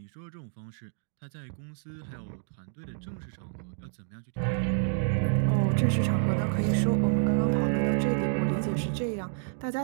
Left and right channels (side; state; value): left; silent; digital silence